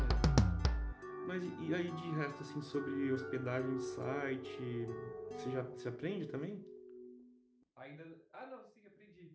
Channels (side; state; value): both; identical; correlation 1.00